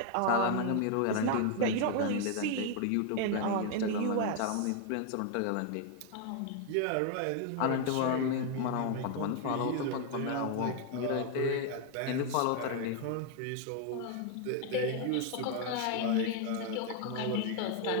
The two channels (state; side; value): different; both; correlation 0.00